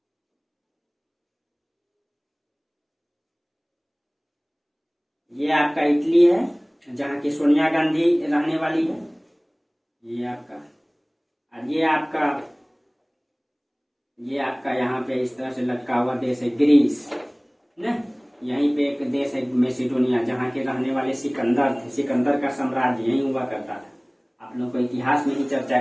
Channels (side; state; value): both; identical; correlation 1.00